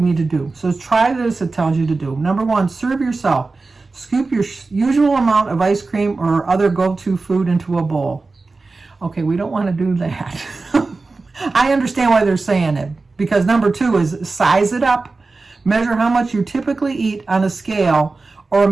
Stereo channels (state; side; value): quieter; left; 3.7 dB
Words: to do. So try this, it tells you to do. Number 1, serve yourself. Scoop your usual amount of ice cream or other go-to food into a bowl. Okay, we don't want to do that. I understand why they're saying it, because number 2 is size it up. Measure how much you typically eat on a scale or a